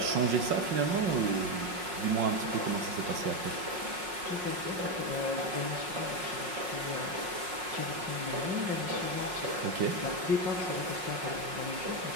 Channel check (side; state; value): left; late; 5.5 ms